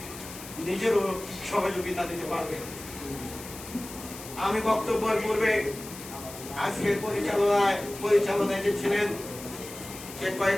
নিজেরও সহযোগিতা দিতে পারবে। আমি বক্তব্যের পূর্বে আজকে পরিচালনায় যে ছিলেন সে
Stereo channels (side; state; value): left; noise; hiss, 13 dB below the sound